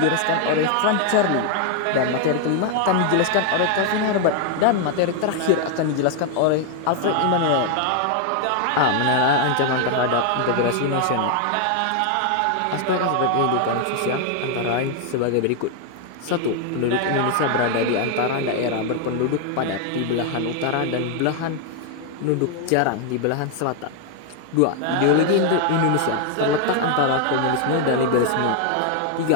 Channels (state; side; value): different; both; correlation 0.00